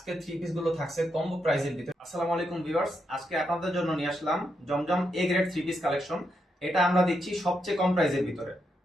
three piece গুলো থাকছে কম্বো প্রাইসের ভিতরে। আসসালামু আলাইকুম ভিউয়ার্স, আজকে আপনাদের জন্য নিয়ে আসলাম Zamzam A grade three piece collection. এটা আমরা দিচ্ছি সবচেয়ে কম প্রাইসের ভিতরে।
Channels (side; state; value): both; normal; correlation 0.82